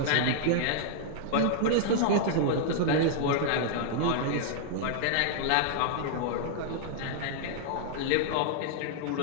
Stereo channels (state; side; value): different; both; correlation -0.01